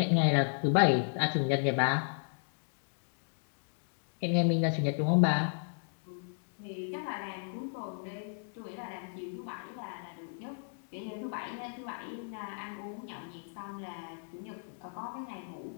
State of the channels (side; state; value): right; silent; digital silence